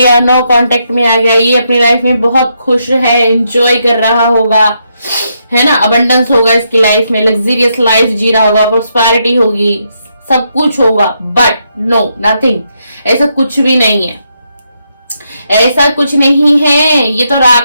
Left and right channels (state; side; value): inverted; both; correlation -0.79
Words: नो कांटेक्ट में आ गया, ये अपनी लाइफ में बहुत खुश है, एंजॉय कर रहा होगा, है ना, अबंडेंस होगा इसकी लाइफ में, लग्जरियस लाइफ जी रहा होगा, प्रोस्पेरिटी होगी, सब कुछ होगा। बट नो नथिंग, ऐसा कुछ भी नहीं है, ऐसा कुछ नहीं है। ये तो